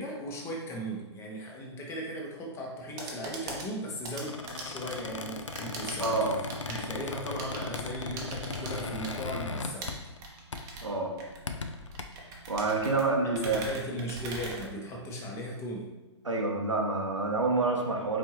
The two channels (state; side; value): normal; both; correlation -0.10